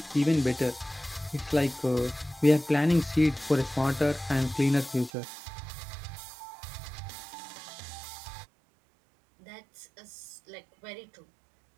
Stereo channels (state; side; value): drops out; left; at 5.1 s